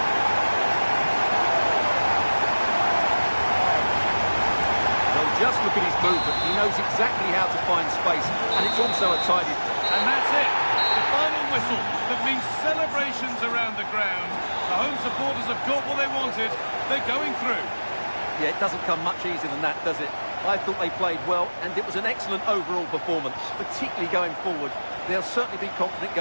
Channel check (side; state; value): both; inverted; correlation -1.00